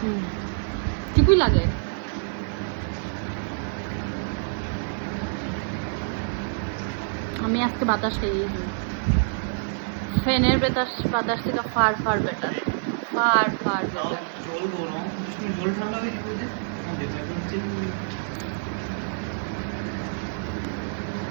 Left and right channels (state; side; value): silent; left; 58 dB below the other